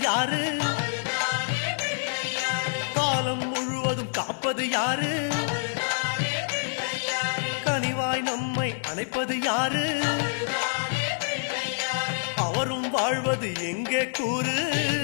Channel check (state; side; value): silent; right; digital silence